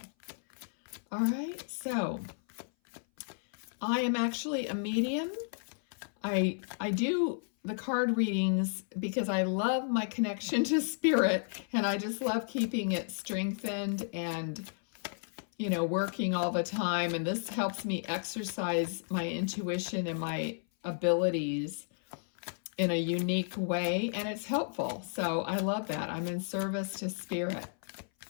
All right, so I am actually a medium. I do the card readings because I love my connection to spirit, and I just love keeping it strengthened and working all the time. And this helps me exercise my intuition and my abilities in a unique way. And it's helpful. So I love that. I'm in service to spirit.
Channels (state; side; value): silent; right; 56 dB below the other